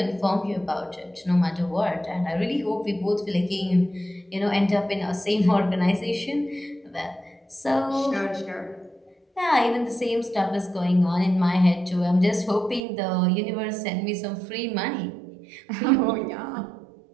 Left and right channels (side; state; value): left; drops out; at 12.8 s